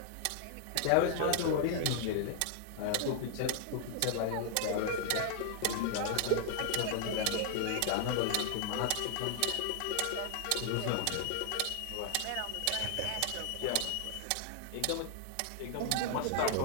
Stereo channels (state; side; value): different; both; correlation 0.00